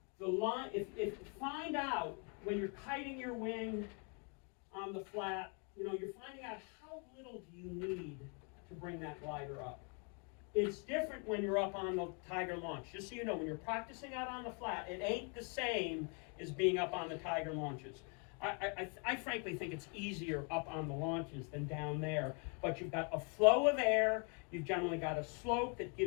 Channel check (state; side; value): quieter; right; 37.4 dB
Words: The line, if find out when you're kiting your wing on the flat, you're finding out how little do you need to bring that glider up. It's different when you're up on the Tiger launch. Just so you know, when you're practicing out on the flat, it ain't the same as being up on the Tiger launches. I frankly think it's easier up on the launches than down there, but you've got a flow of air, you've generally got a slope that